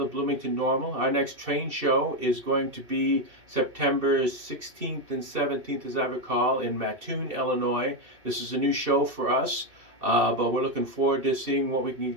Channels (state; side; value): late; left; 2.7 ms